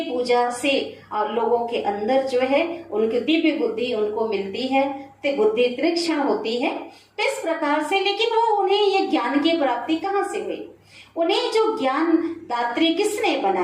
पूजा से लोगों के अंदर जो है उनकी दिव्य बुद्धि उनको मिलती है, तो बुद्धि तीक्ष्ण होती है। इस प्रकार से, लेकिन वो उन्हें ये ज्ञान की प्राप्ति कहाँ से हुई, उन्हें जो ज्ञान दात्री किसने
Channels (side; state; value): both; identical; correlation 1.00